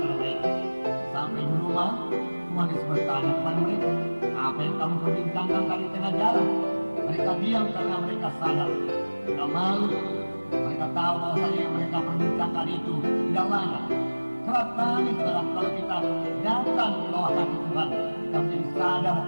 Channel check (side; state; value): both; inverted; correlation -1.00